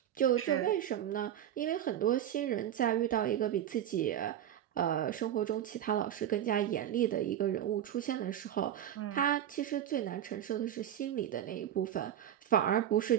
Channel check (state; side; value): quieter; left; 10.9 dB